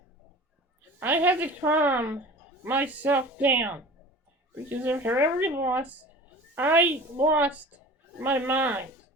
I had to calm myself down because after every loss, I lost my mind.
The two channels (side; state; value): both; normal; correlation 0.40